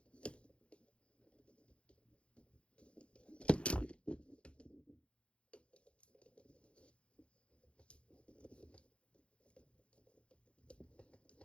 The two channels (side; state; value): right; late; 0.058 ms